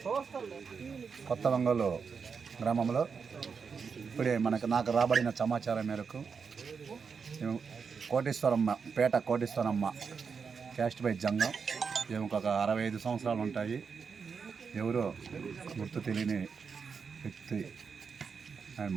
కొత్త వంగలు గ్రామంలో ఇప్పుడే నాకు రాబడిన సమాచారం మేరకు పేట కోటేశ్వరమ్మ క్యాస్ట్ బై జంగం ఈమెకు ఒక 65 సంవత్సరాలు ఉంటాయి. ఎవరో గుర్తు తెలియని వ్యక్తి ఆయన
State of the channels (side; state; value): left; quieter; 5.8 dB